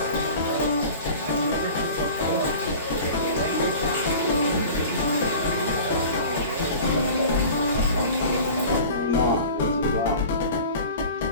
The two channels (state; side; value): inverted; both; correlation -0.40